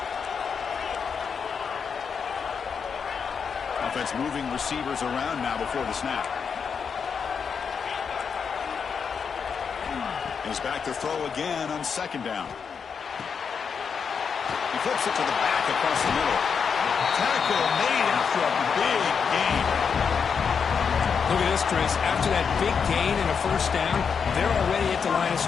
Offense moving receivers around now before the snap. He's back to throw again on second down. He flips it to the back across the middle. Tackle made after a big gain. Look at this, Chris. After that big gain and a first down, they're already at the line of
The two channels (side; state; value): right; quieter; 6.3 dB